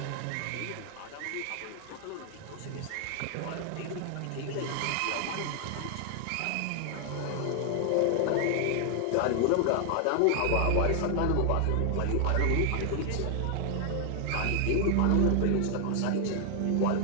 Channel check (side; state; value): both; different; correlation 0.00